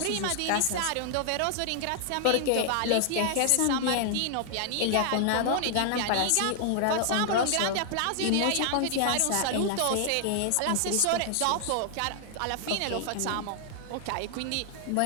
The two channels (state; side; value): different; both; correlation 0.00